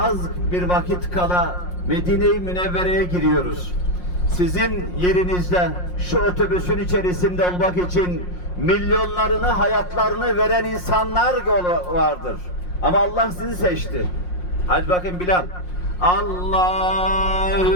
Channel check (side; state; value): right; late; 5.6 ms